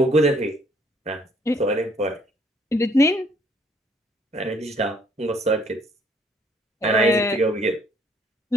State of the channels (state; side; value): normal; both; correlation 0.63